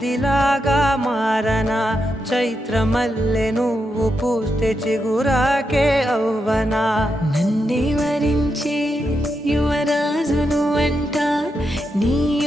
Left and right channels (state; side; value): normal; both; correlation 0.85